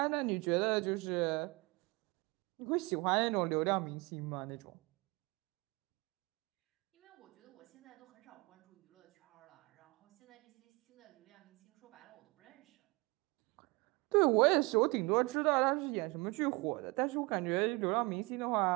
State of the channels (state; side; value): quieter; left; 25.9 dB